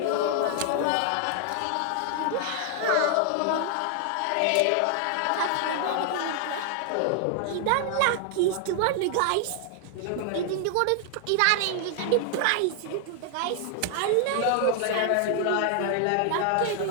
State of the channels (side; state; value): both; different; correlation 0.00